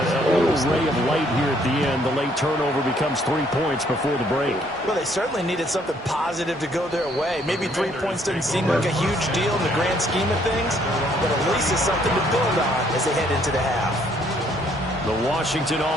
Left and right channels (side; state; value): both; normal; correlation 0.66